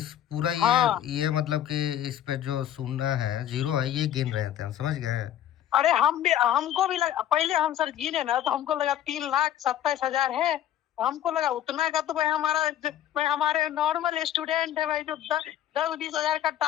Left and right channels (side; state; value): right; quieter; 11.4 dB